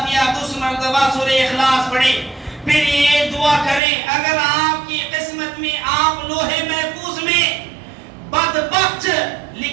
2 مرتبہ سورہ اخلاص پڑھیں، پھر یہ دعا کریں اگر آپ کی قسمت میں آپ لوح محفوظ میں بدبخت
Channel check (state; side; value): drops out; left; at 3.8 s